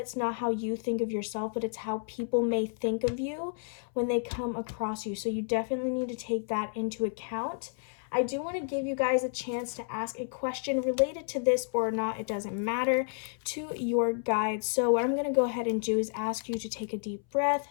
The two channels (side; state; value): right; silent; 57 dB below the other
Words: not how you think of yourself, but it's how people may think of you when they come across you. So you definitely need to take that into account. I do want to give you guys a chance to ask a question related to this or not, it doesn't matter, to your guides. So what I'm going to go ahead and do is ask you to take a deep breath,